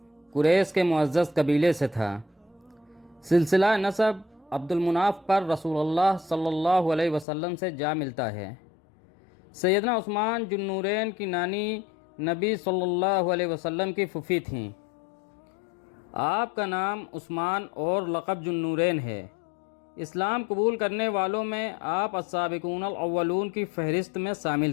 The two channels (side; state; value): right; drops out; at 7.2 s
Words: قریش کے معزز قبیلے سے تھا۔ سلسلہ نسب عبد المناف پر رسول اللہ صلی اللہ علیہ وسلم سے جا ملتا ہے۔ سیدنا عثمان ذو النورین کی نانی نبی صلی اللہ علیہ وسلم کی پھوپھی تھیں۔ آپ کا نام عثمان اور لقب ذو النورین ہے۔ اسلام قبول کرنے والوں میں آپ السابقون الاولون کی فہرست میں شامل